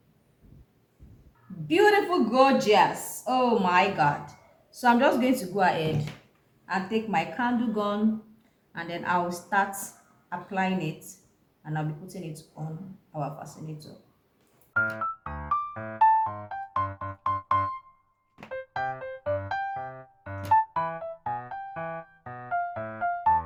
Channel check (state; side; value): identical; both; correlation 1.00